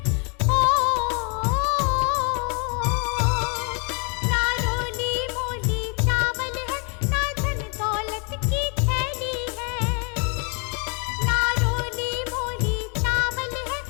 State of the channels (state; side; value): quieter; right; 36.6 dB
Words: ओ। नारोली मोली चावल है ना धन दौलत की थैली है। नारोली मोली चावल है